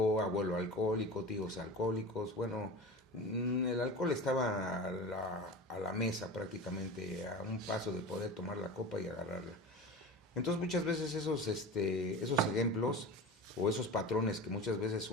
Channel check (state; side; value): normal; both; correlation 0.31